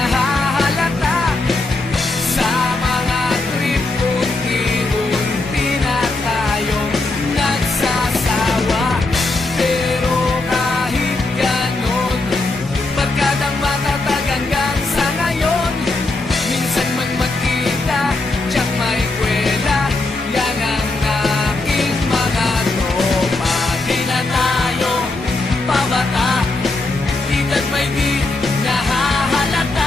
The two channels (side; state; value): right; quieter; 3.2 dB